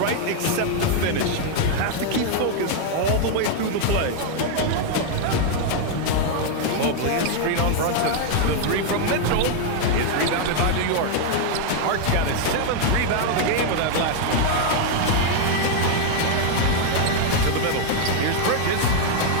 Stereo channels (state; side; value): different; both; correlation 0.00